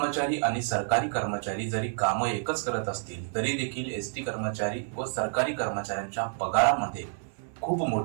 आणि सरकारी कर्मचारी जरी कामं एकच करत असतील तरी देखील एसटी कर्मचारी व सरकारी कर्मचाऱ्यांच्या पगारामध्ये खूप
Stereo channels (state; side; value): silent; left; digital silence